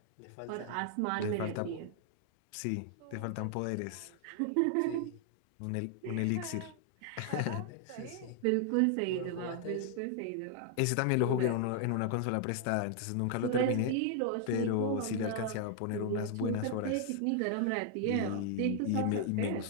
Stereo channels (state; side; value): different; both; correlation 0.00